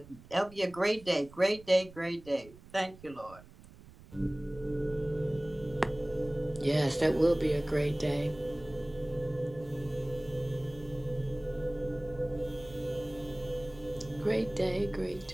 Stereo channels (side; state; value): right; noise; rumble, 20 dB below the sound